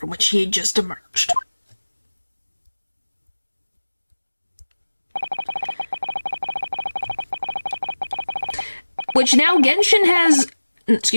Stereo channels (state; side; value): inverted; both; correlation -1.00